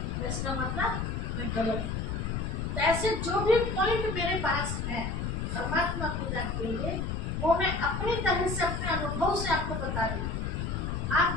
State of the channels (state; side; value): noise; left; rumble, 2 dB below the sound